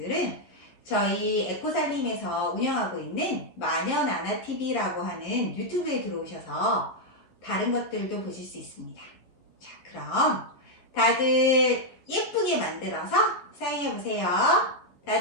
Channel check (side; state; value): right; late; 11 ms